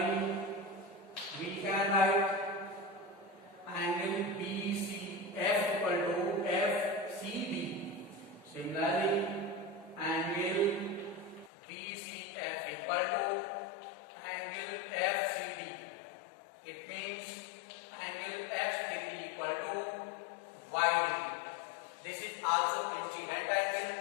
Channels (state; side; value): drops out; right; at 11.5 s